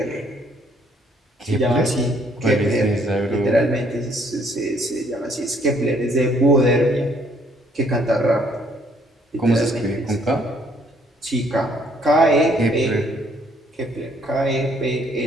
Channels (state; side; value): normal; both; correlation 0.65